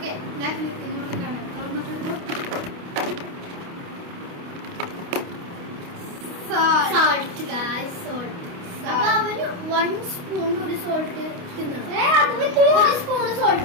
ഞാൻ ഇങ്ങോട്ട് കാണാം. Salt guys, salt. അപ്പൊ അവന് 1 സ്പൂൺ ഒരു സോൾട്ട് തിന്നണം. 1 സ്പൂൺ സോൾട്ട്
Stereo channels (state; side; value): late; left; 29 ms